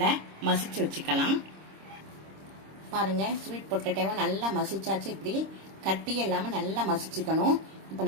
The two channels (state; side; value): late; left; 26 ms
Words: மசிச்சு வச்சுக்கலாம். பாருங்கள், ஸ்வீட் பொட்டேட்டோவை நல்லா மசிச்சாச்சு. இப்படி கட்டி இல்லாமல் நல்லா மசிச்சுக்கணும். இப்போ